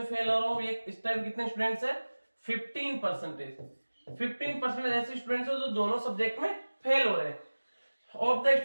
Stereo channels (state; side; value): inverted; both; correlation -1.00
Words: फेल हो रहा हो, ये इस टाइप कितने स्टूडेंट्स है 15%। 15% ऐसे स्टूडेंट्स हैं जो दोनों सब्जेक्ट में फेल हो रहे हैं। Of the